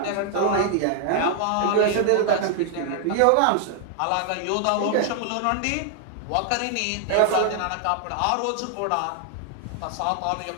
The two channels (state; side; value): different; both; correlation 0.00